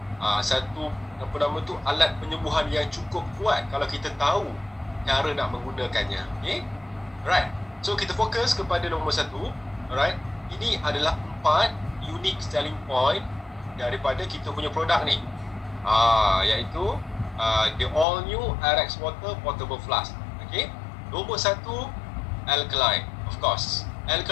Satu apa nama tu, alat penyembuhan yang cukup kuat kalau kita tahu cara nak menggunakannya. Okay? Right. So kita fokus kepada nombor 1. Alright. Ini adalah 4 unique selling point daripada kita punya produk ni. Iaitu the all new RX Water Portable Flask. Okay. Nombor 1, alkaline. Of course.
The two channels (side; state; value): right; drops out; at 18.1 s